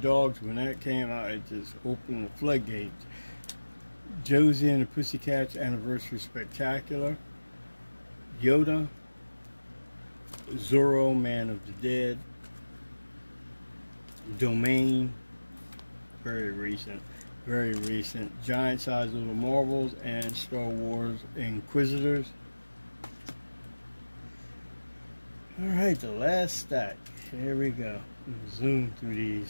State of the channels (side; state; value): both; inverted; correlation -1.00